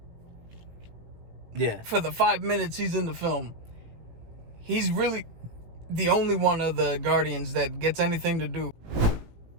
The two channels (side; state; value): left; late; 18 ms